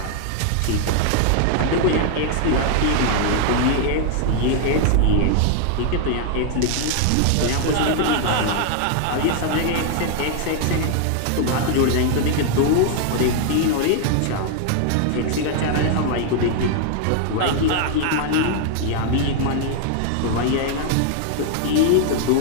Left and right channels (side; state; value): both; different; correlation 0.00